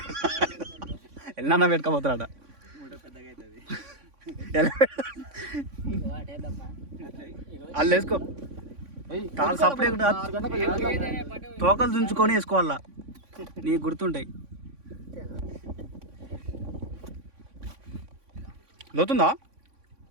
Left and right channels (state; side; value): late; left; 3.5 ms